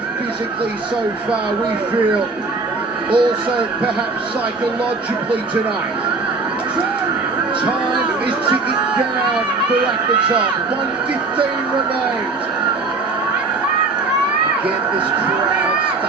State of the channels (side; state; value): left; quieter; 3.8 dB